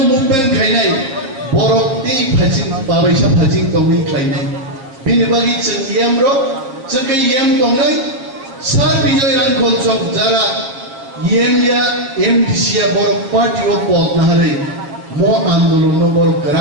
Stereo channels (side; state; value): left; late; 7.5 ms